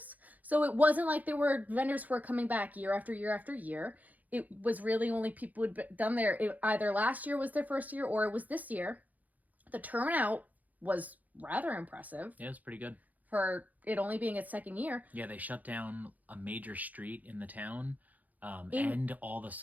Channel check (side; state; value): left; late; 0.079 ms